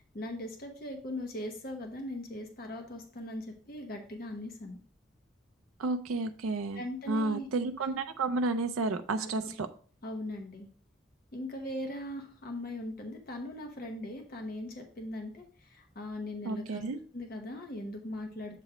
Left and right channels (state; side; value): normal; both; correlation 0.39